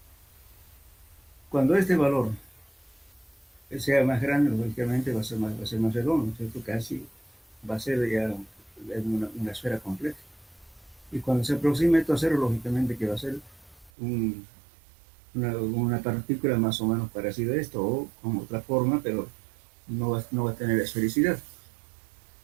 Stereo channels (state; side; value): drops out; left; at 13.9 s